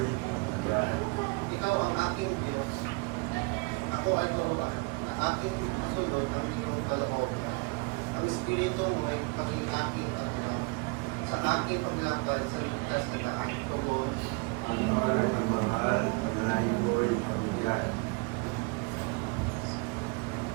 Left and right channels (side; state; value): left; quieter; 29.3 dB